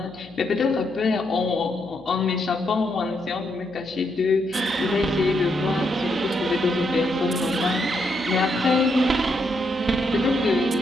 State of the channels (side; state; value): left; noise; hum, 23 dB below the sound